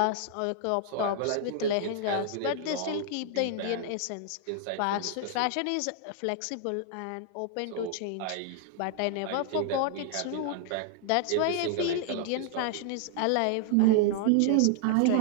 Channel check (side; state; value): both; different; correlation -0.01